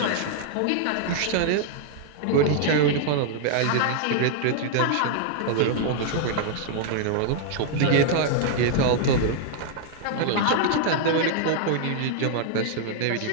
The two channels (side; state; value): both; different; correlation -0.01